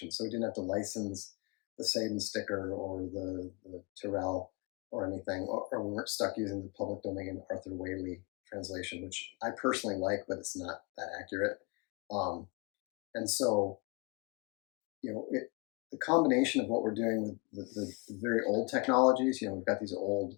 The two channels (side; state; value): right; quieter; 28.2 dB